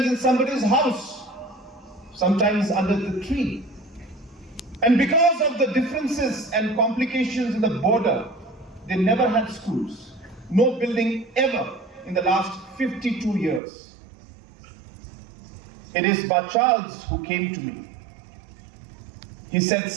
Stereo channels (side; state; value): left; drops out; at 13.6 s